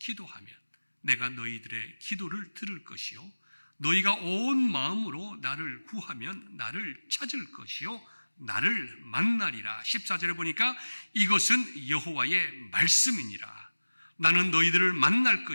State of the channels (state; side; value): inverted; both; correlation -1.00